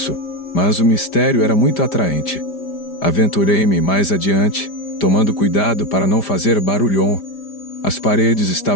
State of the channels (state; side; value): late; right; 5.0 ms